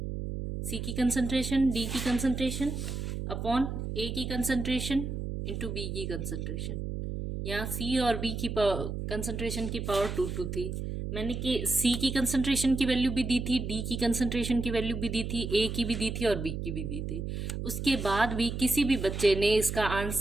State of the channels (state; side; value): noise; right; hum, 4 dB below the sound